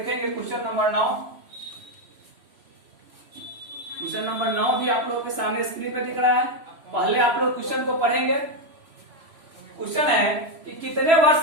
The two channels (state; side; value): late; left; 3.1 ms